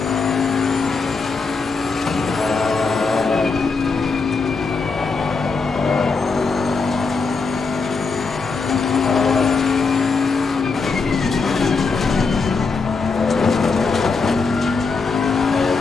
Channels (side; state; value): right; quieter; 4.5 dB